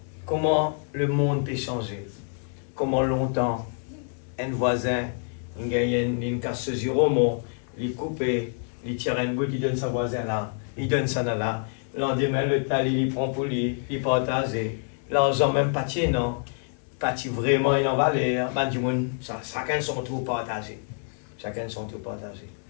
Comment le monde peut changer. Comment longtemps un voisin, il gagne une casse zéro, il coupe, il tire un bout, il donne sa voisin là, il donne ça là. Lendemain, le tal, il prend pour lui, il partage. L'argent même pas tient, non. Pas vraiment, il en valeur. Chacun son tour partagé. Chacun son tour partagé.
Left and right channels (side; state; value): right; silent; 60 dB below the other